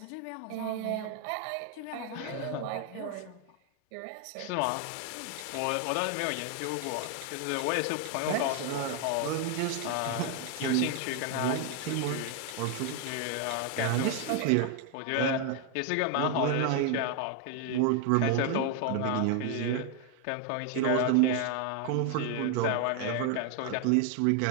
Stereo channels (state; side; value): different; both; correlation 0.01